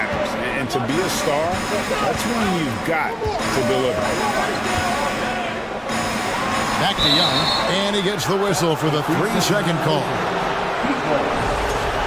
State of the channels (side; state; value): both; identical; correlation 1.00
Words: And to be a star, that's when you've got to deliver. Back to Young, and he gets the whistle for the 3-second call.